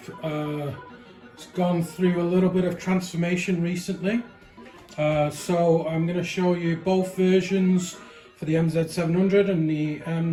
It's gone through a little bit of transformation recently. So I'm going to show you both versions for the MZ700 and the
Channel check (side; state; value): both; identical; correlation 1.00